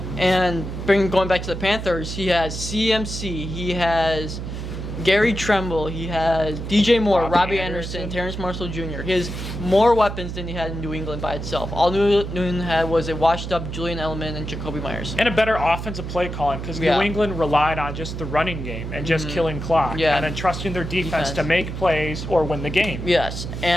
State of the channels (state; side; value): noise; right; hum, 6 dB below the sound